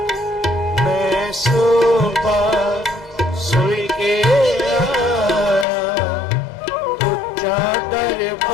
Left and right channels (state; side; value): drops out; right; at 5.7 s